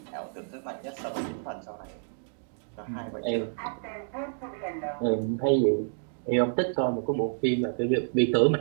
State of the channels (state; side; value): silent; left; digital silence